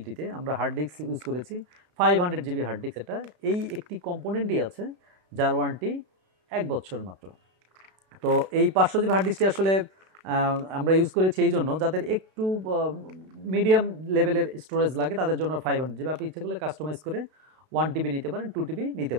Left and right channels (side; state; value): left; late; 32 ms